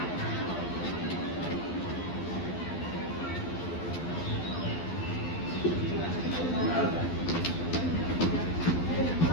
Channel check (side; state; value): right; late; 12 ms